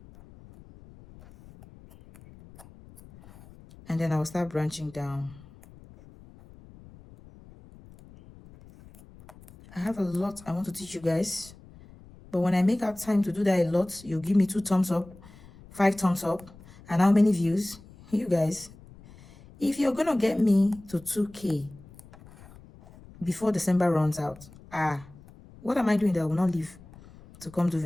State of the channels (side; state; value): left; noise; rumble, 22 dB below the sound